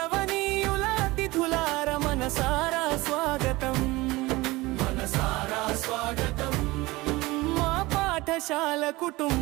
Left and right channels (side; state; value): left; quieter; 21.0 dB